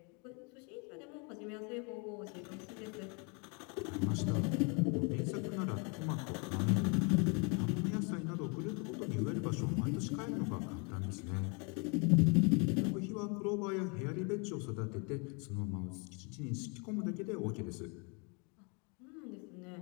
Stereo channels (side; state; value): right; quieter; 33.5 dB